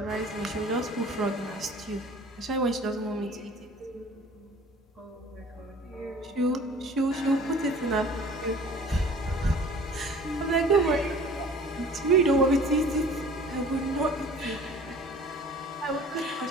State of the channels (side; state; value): both; normal; correlation 0.47